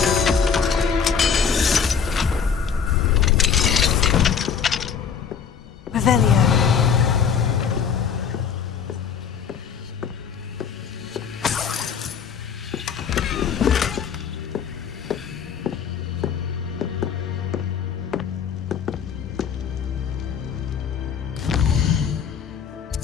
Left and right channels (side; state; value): right; quieter; 7.0 dB